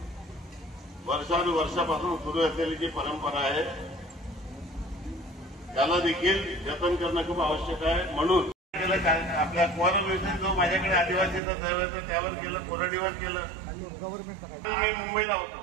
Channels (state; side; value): drops out; left; at 11.4 s